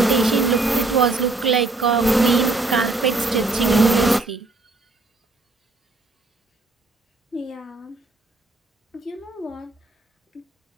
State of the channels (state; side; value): quieter; left; 3.3 dB